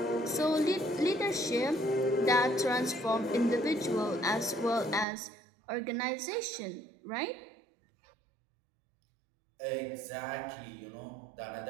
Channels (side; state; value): left; drops out; at 5.1 s